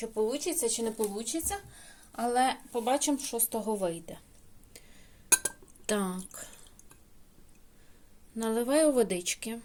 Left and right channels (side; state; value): both; identical; correlation 1.00